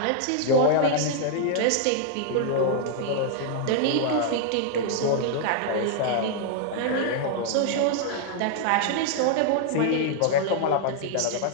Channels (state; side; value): different; both; correlation -0.01